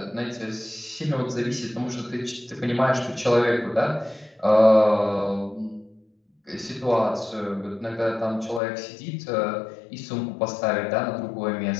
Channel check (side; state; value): right; drops out; at 8.6 s